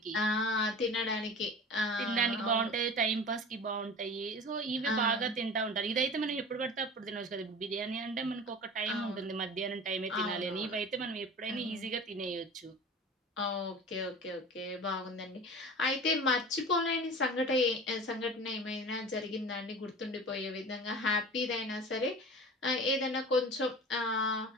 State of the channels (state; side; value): normal; both; correlation 0.37